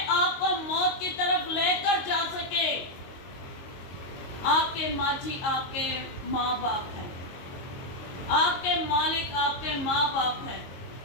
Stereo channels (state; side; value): late; right; 22 ms